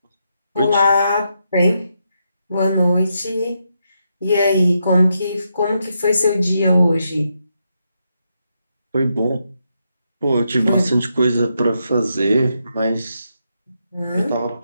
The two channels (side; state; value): both; inverted; correlation -0.82